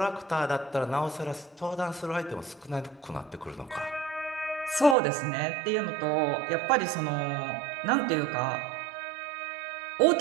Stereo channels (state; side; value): drops out; left; at 5.0 s